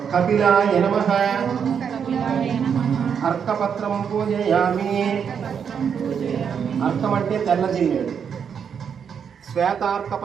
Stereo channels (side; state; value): left; quieter; 7.3 dB